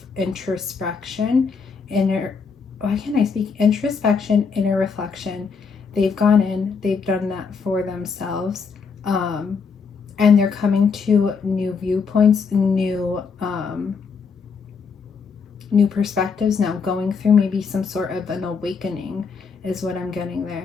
introspection, introspection, inner reflection. They've gone in, they've done that for themselves. And they're coming to new viewpoints, new perspectives now, going through maybe some sort of an awakening is what I'm getting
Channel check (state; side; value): quieter; right; 5.4 dB